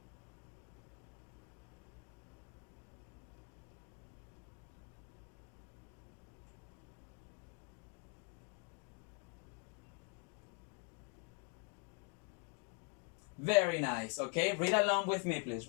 Very nice. Okay, read along with me, please.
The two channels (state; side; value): quieter; right; 35.4 dB